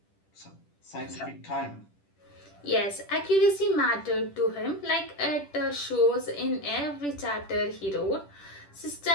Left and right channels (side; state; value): right; late; 10 ms